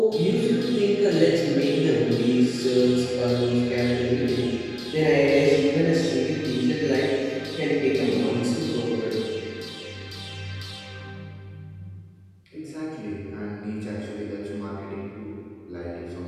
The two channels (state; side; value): identical; both; correlation 1.00